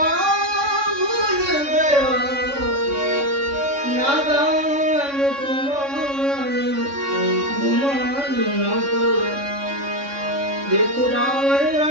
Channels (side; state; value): left; late; 3.6 ms